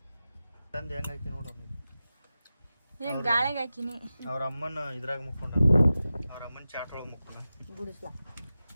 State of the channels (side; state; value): both; inverted; correlation -0.94